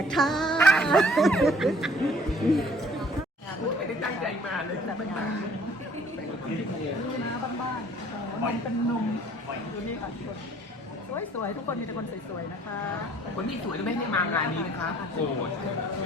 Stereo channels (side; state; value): both; normal; correlation 0.56